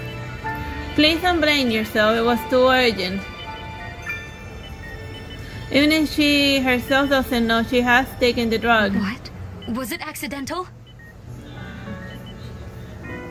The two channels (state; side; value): identical; both; correlation 1.00